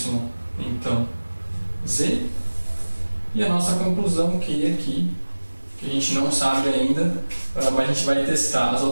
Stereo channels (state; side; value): inverted; both; correlation -1.00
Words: então, z. E a nossa conclusão que aqui, que a gente não sabe ainda, mas a gente vai testar as